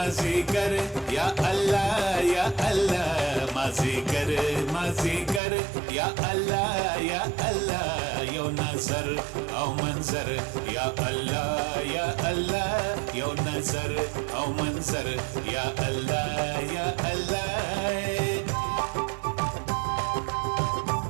مازیګر یا الله یا الله مازیګر مازیګر یا الله یا الله یو نظر او منظر یا الله یا الله یو نظر او منظر یا الله یا الله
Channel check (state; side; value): drops out; left; at 5.4 s